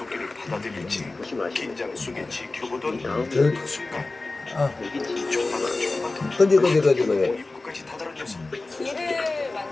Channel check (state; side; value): quieter; right; 3.3 dB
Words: 받아들일지 보시면 아시죠? 긴장 속에 지켜보던 이 다음 그 순간 아, 여기 지금 조금만 그지. 입구까지 다다른 녀석 길을